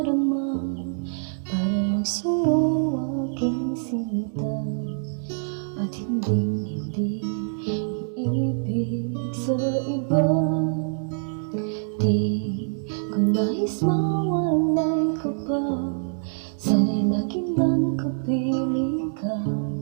para lang sa'yo aking sinta, at hindi iibig sa iba. Di ko nais mawalay ka pa, sana'y laging nang kapiling ka,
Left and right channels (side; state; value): left; silent; digital silence